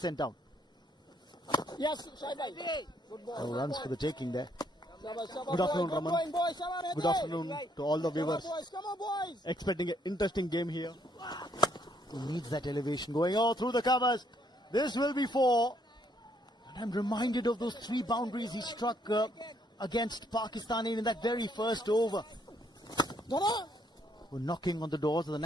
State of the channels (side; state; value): both; normal; correlation 0.69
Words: sent down. Yes, No runs for the taking there. Good afternoon, Raman. Good afternoon to all the viewers. Expecting an interesting game here. He needs that elevation going all through the covers. This will be 4. And I'm reminded of those 3 boundaries he struck against Pakistan in that very first over. We're knocking on the doors of the